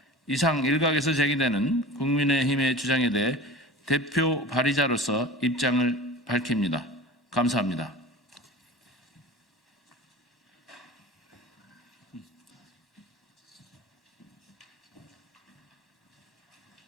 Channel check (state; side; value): normal; both; correlation 0.36